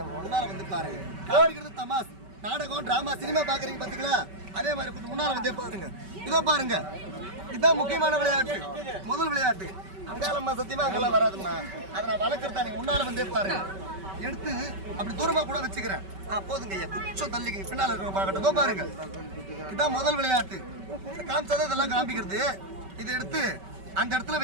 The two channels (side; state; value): left; late; 5.2 ms